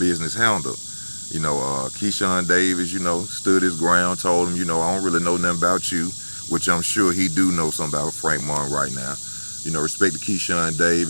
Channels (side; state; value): both; inverted; correlation -1.00